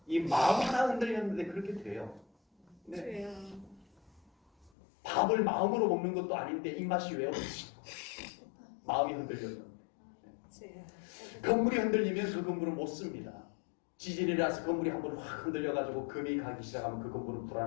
이 마음 하나 흔들렸는데 그렇게 돼요. 네. 밥을 마음으로 먹는 것도 아닌데 입맛이 왜 없지? 마음이 흔들렸는데. 건물이 흔들리면 그 건물은 못 씁니다. 지진이라서 건물이 한번 확 흔들려가지고 금이 가기 시작하면 그 건물은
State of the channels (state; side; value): drops out; right; at 4.7 s